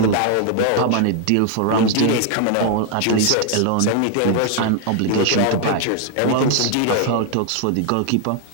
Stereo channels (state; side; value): different; both; correlation 0.00